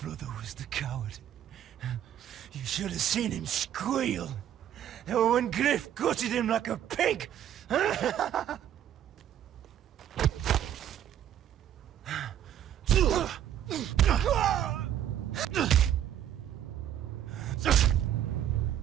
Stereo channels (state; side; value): quieter; left; 10.6 dB